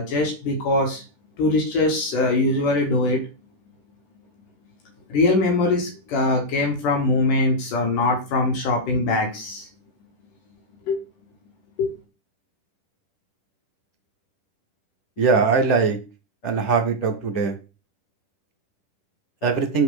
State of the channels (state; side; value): late; right; 10 ms